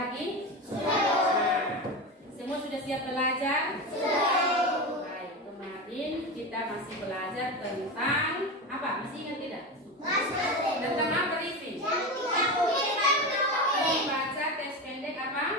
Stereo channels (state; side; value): normal; both; correlation 0.21